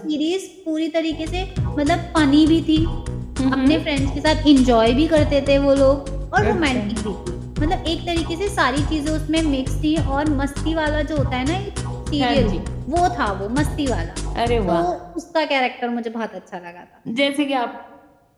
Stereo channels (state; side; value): identical; both; correlation 1.00